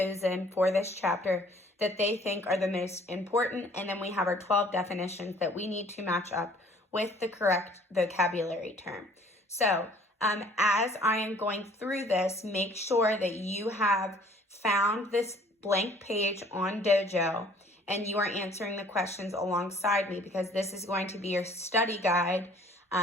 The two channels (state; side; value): normal; both; correlation 0.56